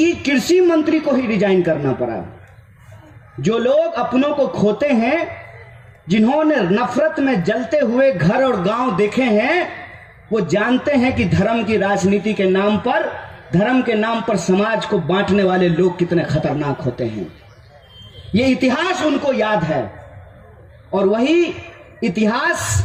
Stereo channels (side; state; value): both; identical; correlation 1.00